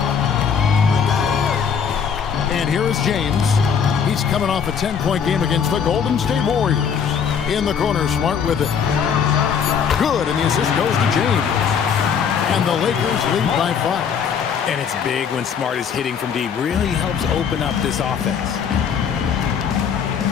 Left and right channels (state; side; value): quieter; right; 7.1 dB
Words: And here is James. He's coming off a 10-point game against the Golden State Warriors. In the corner, Smart with it. Good, and the assist goes to James. And the Lakers lead by 5. And it's big when Smart is hitting from deep. Really helps open up this offense.